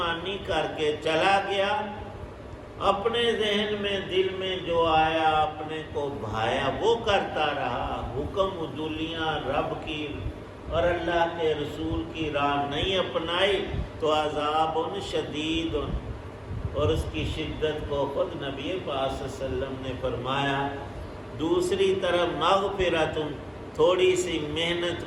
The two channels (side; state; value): both; identical; correlation 1.00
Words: کر کے چلا گیا، اپنے ذہن میں دل میں جو آیا اپنے کو بھایا وہ کرتا رہا، حکم عدولیاں رب کی اور اللہ کے رسول کی راہ نہیں اپنائی تو عذاب شدید، اور اس کی شدت کو خود نبی پاک صلی اللہ علیہ وسلم نے فرمایا۔ دوسری طرف مغفرت، تھوڑی سی محنت